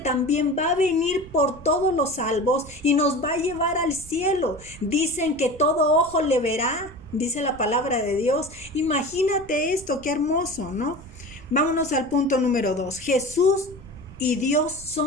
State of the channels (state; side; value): noise; right; rumble, 19 dB below the sound